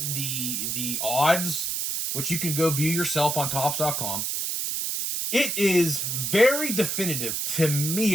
the odds, which you can go view yourself on Topps.com, it is very definitive, to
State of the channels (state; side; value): noise; right; hiss, 1 dB below the sound